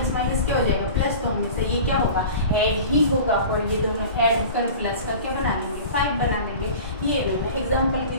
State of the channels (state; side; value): inverted; both; correlation -0.38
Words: माइनस क्या हो जाएगा, प्लस, तो हमेशा ये क्या होगा, ऐड ही होगा, और ये दोनों ऐड होकर प्लस का क्या बना लेंगे, 5 बना लेंगे। ये इन्होंने एग्जाम्पल भी